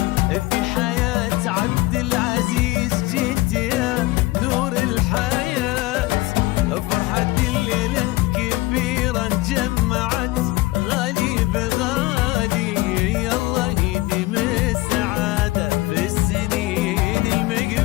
في حياة عبد العزيز جيت يا نور الحياة. فرحة الليلة كبيرة جمعت غالي بغالي الله يديم السعادة في السنين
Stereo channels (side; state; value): right; quieter; 19.7 dB